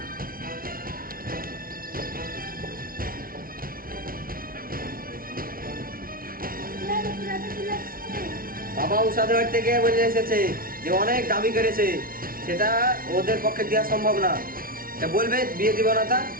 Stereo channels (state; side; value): late; left; 0.42 ms